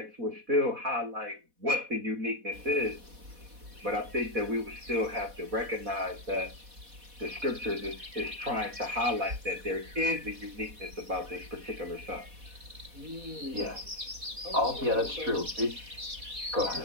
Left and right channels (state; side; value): late; left; 4.1 ms